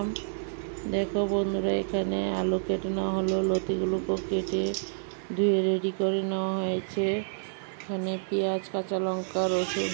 দেখো বন্ধুরা, এখানে আলু কেটে নেওয়া হলো, লতিগুলোকে কেটে ধুয়ে রেডি করে নেওয়া হয়েছে। এখানে পেঁয়াজ, কাঁচা লঙ্কা, রসুন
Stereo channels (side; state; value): left; silent; 59 dB below the other